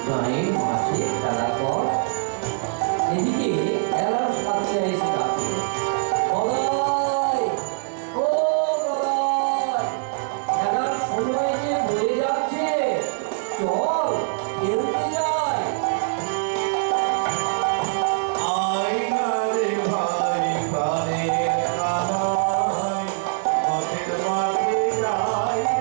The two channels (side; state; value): left; silent; 63 dB below the other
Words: গাঁয়ের মাঠে খেলা কর। এদিকে খেলার সাথে এসে ডাকে, গদাই, ও গদাই, খেলার সময় যে হয়ে যাচ্ছে, চল খেলতে যাই। আইনা রে ভাই প্রাণের কানাই, পথের